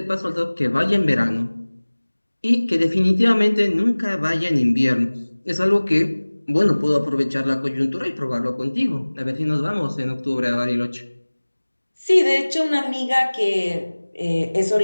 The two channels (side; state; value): both; inverted; correlation -1.00